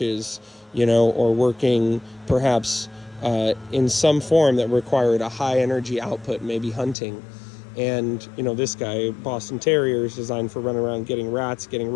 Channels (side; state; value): right; drops out; at 7.0 s